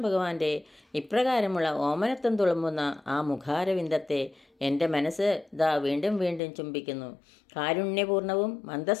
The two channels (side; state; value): right; drops out; at 6.4 s